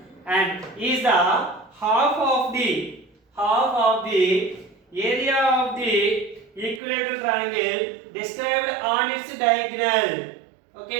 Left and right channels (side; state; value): left; drops out; at 6.8 s